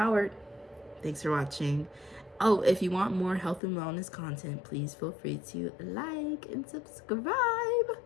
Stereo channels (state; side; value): drops out; right; at 3.6 s